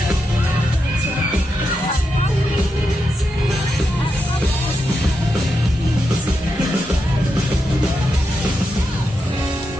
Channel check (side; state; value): both; normal; correlation 0.86